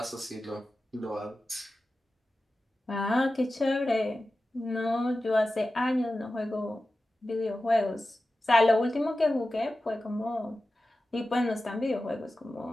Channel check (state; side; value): normal; both; correlation 0.94